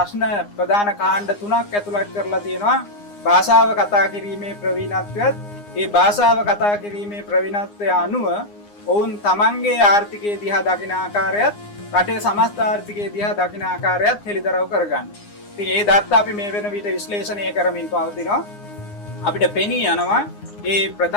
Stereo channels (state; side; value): late; right; 9.7 ms